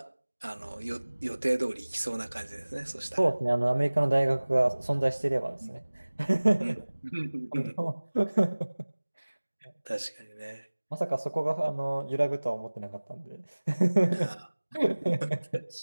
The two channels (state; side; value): inverted; both; correlation -1.00